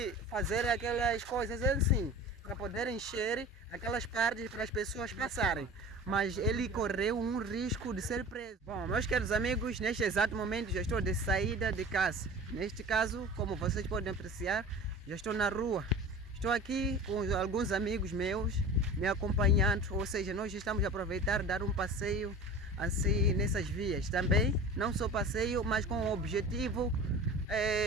fazer aquelas coisas assim, para poder encher aquelas partes para as pessoas passarem. Mas ele correu um risco de ser preso. Bom, meus queridos amigos, neste exato momento já estou de saída de casa. Neste caso, como vocês podem apreciar, já estou na rua. Estou aqui com alguns amigos meus me acompanhando, ou seja, nós estamos a aproveitar dar um passeio assim nessas vias. Também, não só passeio, mas com o objetivo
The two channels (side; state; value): both; normal; correlation 0.38